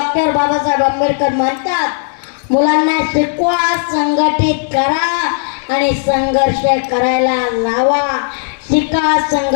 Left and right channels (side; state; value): right; silent; digital silence